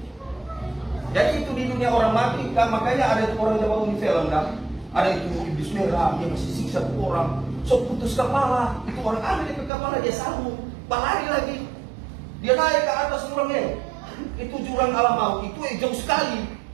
Jadi itu di dunia orang mati, kan makanya ada orang yang bangun di film kan, ada itu iblis merah, dia masih siksa orang, so putus kepala, itu orang ambil ke kepala dia sambung, lari lagi, dia naik ke atas jurangnya, itu jurang alam maut, itu jauh sekali,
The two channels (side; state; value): left; drops out; at 9.7 s